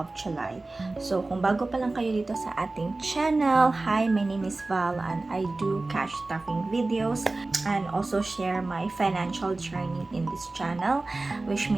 July. So kung bago pa lang kayo dito sa ating channel, hi, my name is Val and I do cash stuffing videos and also share my financial journey in this channel, which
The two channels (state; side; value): quieter; left; 3.2 dB